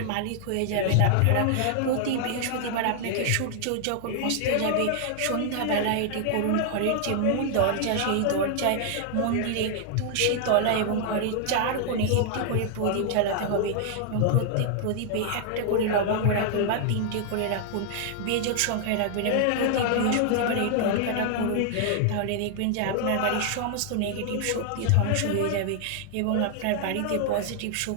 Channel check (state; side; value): different; both; correlation 0.00